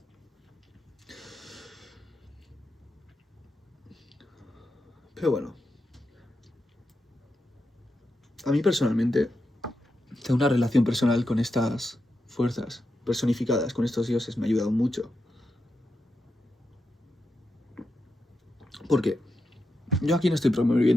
Pero bueno, a mí personalmente tengo una relación personal con estas fuerzas personificadas, con estos dioses, me ha ayudado mucho. Porque yo aquí no estoy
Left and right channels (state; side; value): normal; both; correlation 0.87